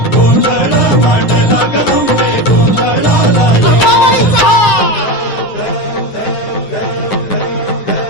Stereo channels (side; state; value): right; late; 9.6 ms